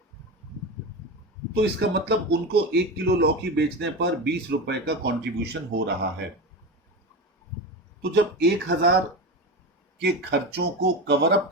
तो इसका मतलब उनको 1 किलो लौकी बेचने पर 20 रुपए का कंट्रीब्यूशन हो रहा है। तो जब 1,000 के खर्चों को कवर अप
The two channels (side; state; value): both; normal; correlation 0.22